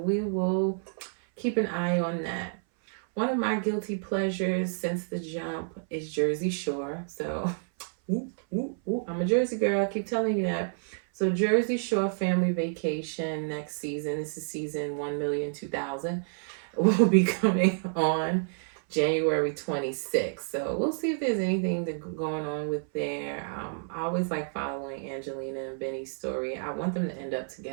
will keep an eye on that. One of my guilty pleasures since the jump is Jersey Shore. So, I'm a Jersey girl. I keep telling you that. So Jersey Shore Family Vacation next season. This is season 1,000,000 will be coming on January 26th. So we'll see if there's anything going on with there. I always like following Angelina and Benny's story. I want them to end up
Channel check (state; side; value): silent; left; 58 dB below the other